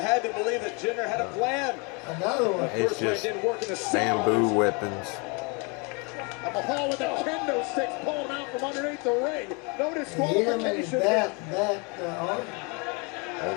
to believe that Jinder had a plan. Another one. It's just bamboo weapons. Mahal with the kendo sticks pulling out from underneath the ring. No disqualification. Oh,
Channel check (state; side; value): quieter; right; 31.5 dB